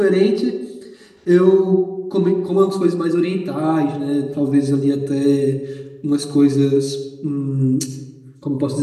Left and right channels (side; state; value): both; identical; correlation 1.00